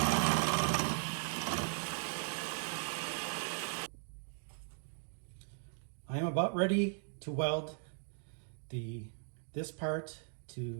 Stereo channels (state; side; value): silent; left; 52 dB below the other